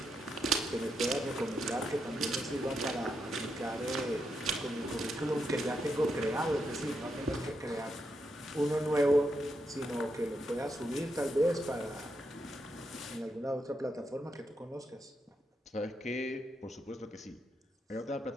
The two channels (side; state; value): both; normal; correlation 0.83